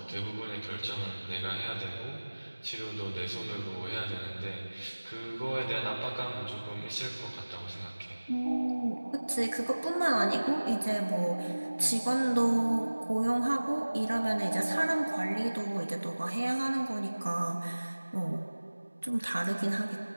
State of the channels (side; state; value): both; inverted; correlation -1.00